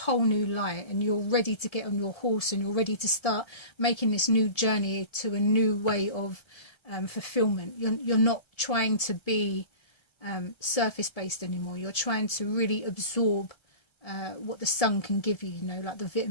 new light, and you're ready to get on your horse, and you're ready to start making this new journey to a new way of fulfillment. You're not trying to be surface based anymore. You're trying to really absorb what the sun can give you, you know, like the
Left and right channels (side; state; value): right; late; 1.7 ms